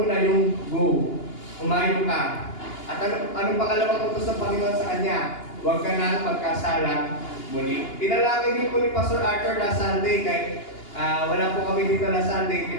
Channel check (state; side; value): late; right; 2.8 ms